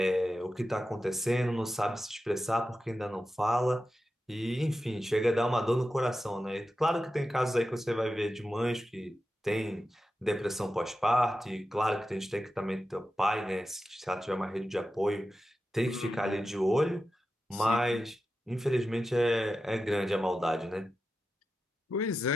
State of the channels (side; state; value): both; normal; correlation 0.92